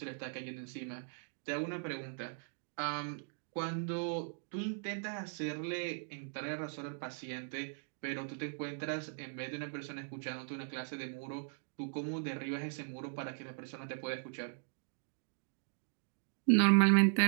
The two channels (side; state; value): left; silent; digital silence